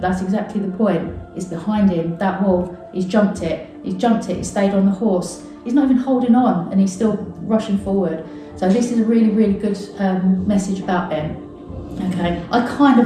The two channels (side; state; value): both; identical; correlation 1.00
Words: that's exactly the point. It's behind him, that wall. He's jumped it, he stayed on the horse. He's not even holding on, and he's still rushing forward. So this is a really, really good message about Ben. Okay, I kind